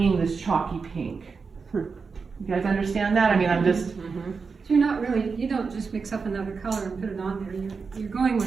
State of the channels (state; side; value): quieter; left; 5.0 dB